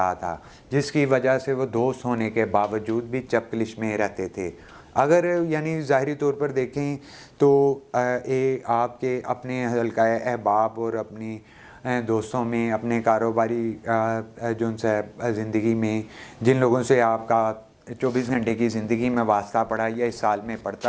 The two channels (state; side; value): identical; both; correlation 1.00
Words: تھا، جس کی وجہ سے وہ دوست ہونے کے باوجود بھی چپکلش میں رہتے تھے. اگر یعنی ظاہری طور پر دیکھیں تو آپ کے اپنے حلقہ احباب اور اپنی دوستوں میں، اپنے کاروباری جو ان سے زندگی میں جن لوگوں سے آپ کا 24 گھنٹے کی زندگی میں واسطہ پڑا، یا اس سال میں